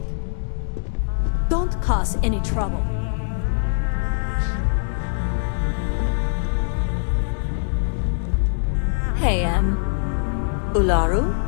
Don't cause any trouble. Hey, Ularu?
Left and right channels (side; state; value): right; silent; digital silence